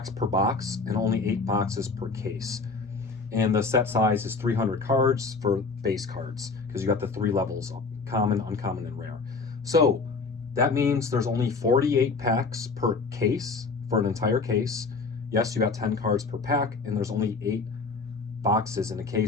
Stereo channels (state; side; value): quieter; right; 4.3 dB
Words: per box and only 8 boxes per case. And the set size is 300 cards for base cards, because you got the 3 levels, common, uncommon, and rare. So that means there's only 48 packs per case for an entire case. Yes, you got 10 cards per pack, and there's only 8 boxes in a